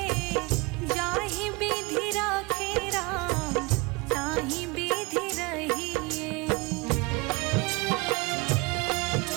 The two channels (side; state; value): left; quieter; 25.7 dB